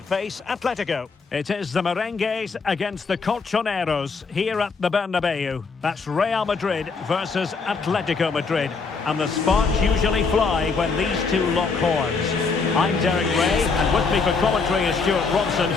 Atletico. It is the Merengues against the Colchoneros here at the Bernabeu. That's Real Madrid versus Atletico Madrid. And the sparks usually fly when these two lock horns. I'm Derek Ray, and with me for commentary is Stuart Robson.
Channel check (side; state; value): right; quieter; 4.7 dB